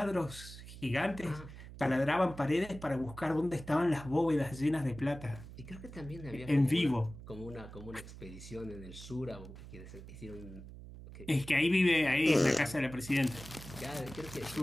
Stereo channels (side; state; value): right; noise; hum, 14 dB below the sound